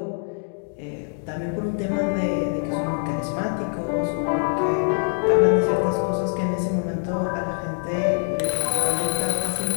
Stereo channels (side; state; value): right; silent; 63 dB below the other